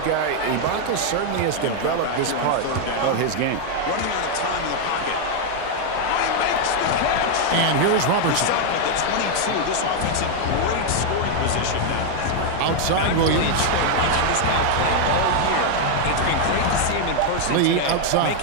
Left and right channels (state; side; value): different; both; correlation 0.00